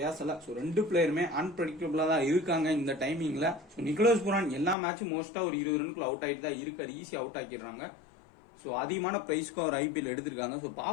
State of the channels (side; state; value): right; drops out; at 4.8 s